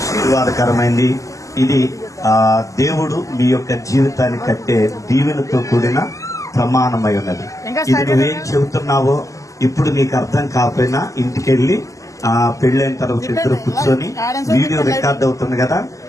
ఇది. దేవుడు మీ యొక్క జీవితాన్ని కట్టే దీవెనతో కూడిన ప్రమాణమై ఉన్నది. ఇది నువ్వేం చెబుతున్నావో ఇప్పుడు నీకు అర్థం కాకపోయినా ఇంటికెళ్ళి పెళ్ళైన తర్వాత ఇద్దరు కూర్చొని వీడియో రికార్డ్ అవుతుంది కదా,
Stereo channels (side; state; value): right; late; 0.16 ms